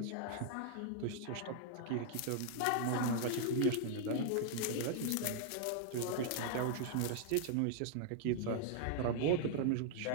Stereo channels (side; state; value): both; different; correlation -0.01